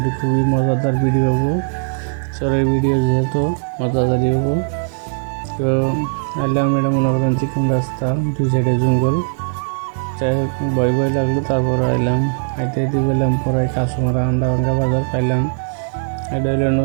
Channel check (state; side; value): silent; left; 64 dB below the other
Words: খুবই মজাদার ভিডিও হবো, চরের ভিডিও যেহেতু মজাদারই হবো। তো এলাম, এটা মনে করেন চিকন রাস্তা, দুই সাইডে জঙ্গল। যাই হোক, ভয় লাগলো, তারপর এলাম। হাইতে পেলাম পরে কাঁচমারা আন্ডাভাঙ্গা বাজার পাইলাম। এটা হলো